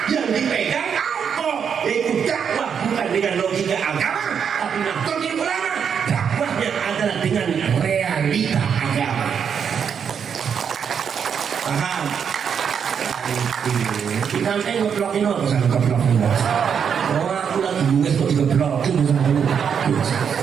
yang dipegang apa? Yaitu dakwah bukan dengan logika agama, tapi Nahdlatul Ulama dakwahnya adalah dengan realita agama. Paham? Kita ngeplokin apa sama ngeplokin? Oh aku lagi nulis kok digeplokin sama lu.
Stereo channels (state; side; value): quieter; left; 7.3 dB